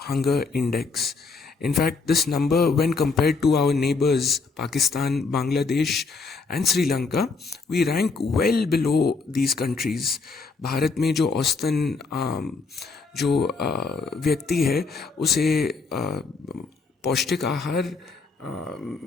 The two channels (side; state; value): right; quieter; 4.3 dB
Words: index. In fact, this number, when compared to our neighbors, Pakistan, Bangladesh, and Sri Lanka, we rank well below these countries. Bharat में जो औसतन जो व्यक्ति है उसे पौष्टिक आहार